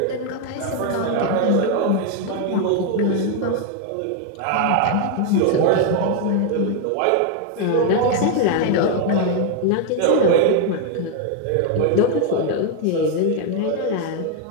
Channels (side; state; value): both; different; correlation 0.00